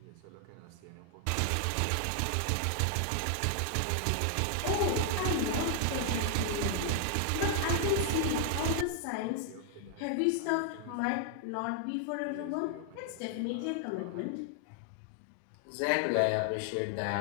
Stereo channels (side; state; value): both; different; correlation 0.00